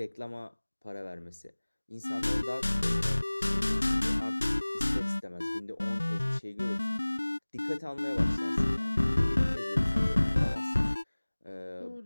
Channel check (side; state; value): both; inverted; correlation -1.00